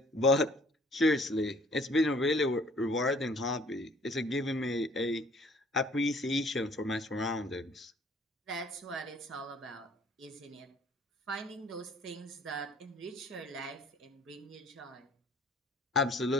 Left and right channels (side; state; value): both; normal; correlation 0.57